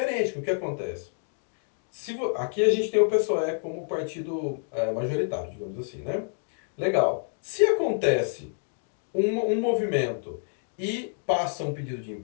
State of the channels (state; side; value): silent; right; digital silence